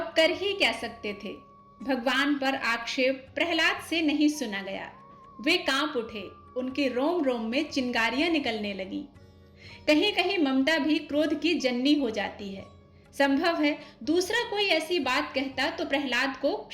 कर ही क्या सकते थे। भगवान पर आक्षेप प्रहलाद से नहीं सुना गया। वे कांप उठे, उनके रोम रोम में चिंगारियां निकलने लगी। कहीं कहीं ममता भी क्रोध की जननी हो जाती है। संभव है दूसरा कोई ऐसी बात कहता तो प्रहलाद को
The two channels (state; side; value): identical; both; correlation 1.00